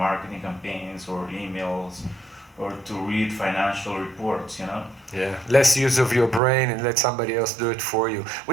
campaigns or emails, or to read financial reports, Yeah, less use of your brain and let somebody else do it for you,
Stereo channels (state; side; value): drops out; left; at 6.4 s